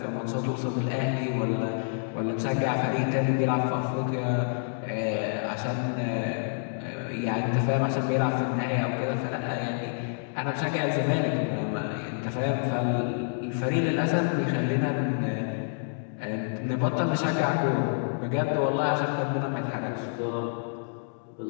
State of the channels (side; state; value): right; silent; digital silence